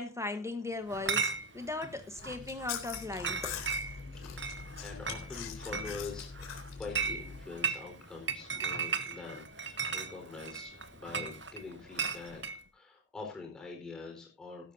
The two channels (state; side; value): normal; both; correlation 0.04